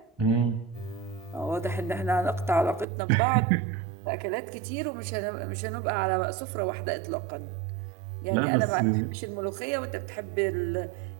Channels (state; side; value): drops out; left; at 2.9 s